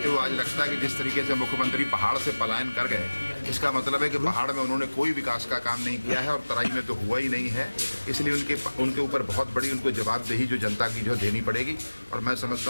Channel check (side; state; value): both; inverted; correlation -1.00